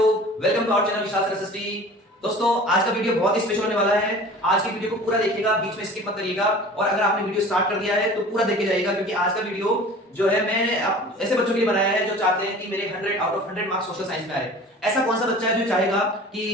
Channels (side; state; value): both; normal; correlation 0.42